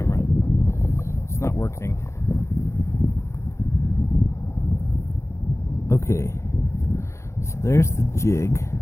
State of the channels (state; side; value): late; right; 0.14 ms